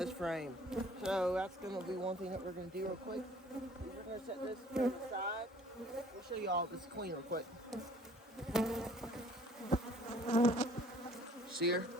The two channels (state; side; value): normal; both; correlation 0.55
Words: frame. So that's going to be one thing that we're going to do real quick. We're going to set this to the side. We'll show you all this queen real quick. See her?